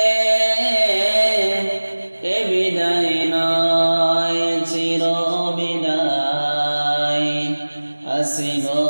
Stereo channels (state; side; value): inverted; both; correlation -1.00